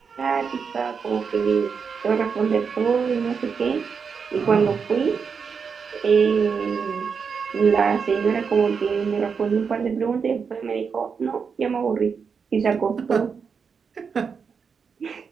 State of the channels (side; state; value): left; quieter; 5.9 dB